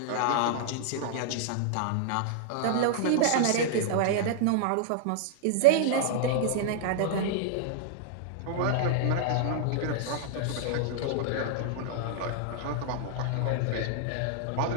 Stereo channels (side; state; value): both; different; correlation -0.01